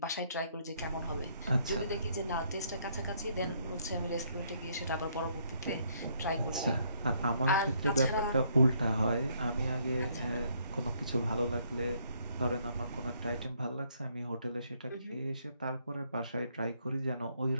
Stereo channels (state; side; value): inverted; both; correlation -0.69